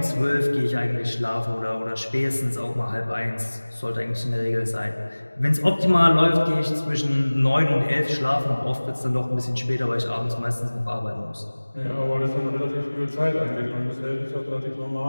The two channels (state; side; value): inverted; both; correlation -1.00